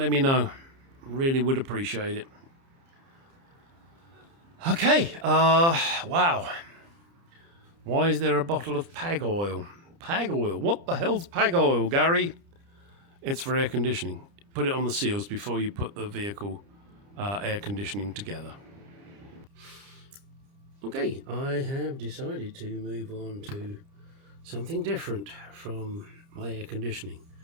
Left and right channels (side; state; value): left; late; 30 ms